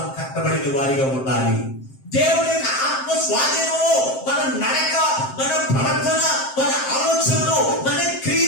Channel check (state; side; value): late; right; 7.6 ms